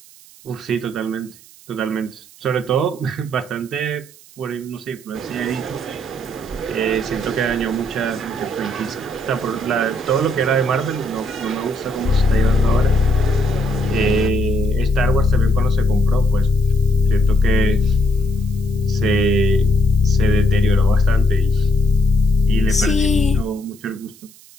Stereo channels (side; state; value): right; noise; hiss, 24 dB below the sound